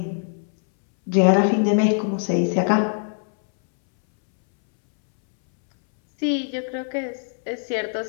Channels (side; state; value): right; silent; 64 dB below the other